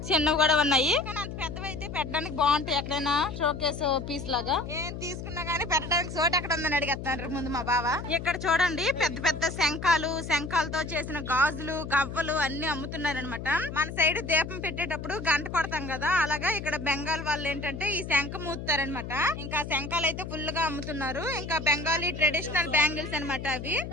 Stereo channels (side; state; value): left; noise; hum, 8 dB below the sound